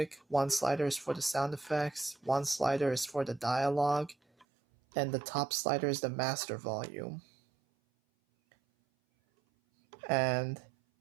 one slider is for the sound effects, one slider is for the dialogue, and the top slider is the master volume. And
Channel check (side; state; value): left; drops out; at 4.5 s